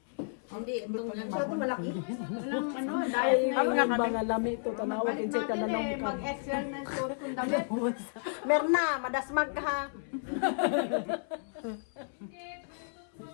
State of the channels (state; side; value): silent; right; 56 dB below the other